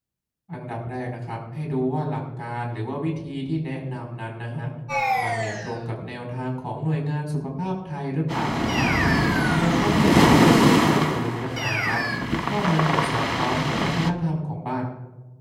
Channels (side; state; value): both; identical; correlation 1.00